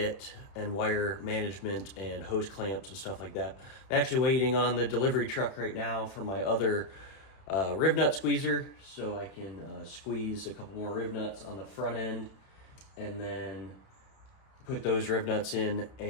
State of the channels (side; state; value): right; late; 31 ms